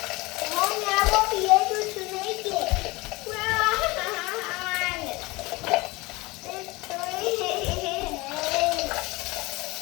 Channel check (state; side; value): quieter; right; 22.8 dB